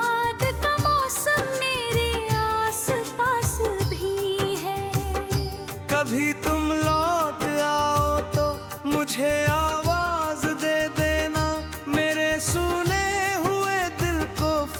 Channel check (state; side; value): identical; both; correlation 1.00